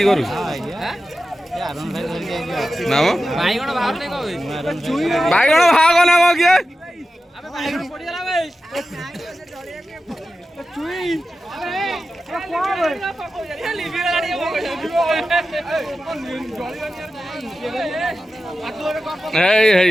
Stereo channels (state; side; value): normal; both; correlation 0.93